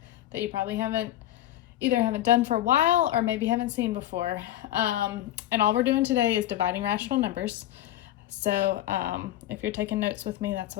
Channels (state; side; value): quieter; right; 13.6 dB